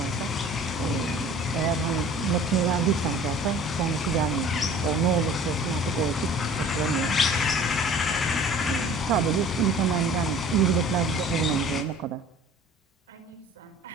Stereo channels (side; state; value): both; normal; correlation 0.47